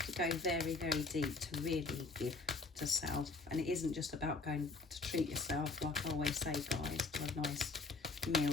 to go very, very deep to really give to self. And it isn't just about going to treat yourself, like I always say, guys, to a nice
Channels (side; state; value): right; quieter; 3.7 dB